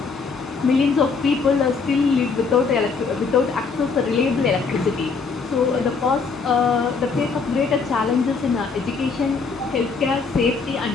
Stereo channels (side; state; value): right; quieter; 4.9 dB